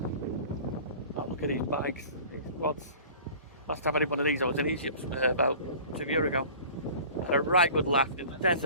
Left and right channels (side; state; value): both; inverted; correlation -0.44